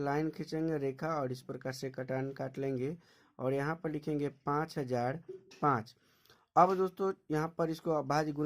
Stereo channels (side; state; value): both; identical; correlation 1.00